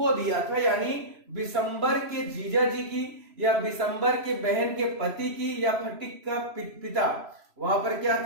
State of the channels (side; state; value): left; late; 3.0 ms